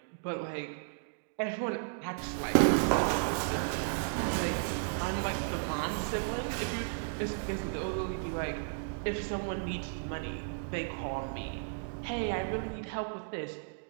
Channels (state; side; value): silent; left; digital silence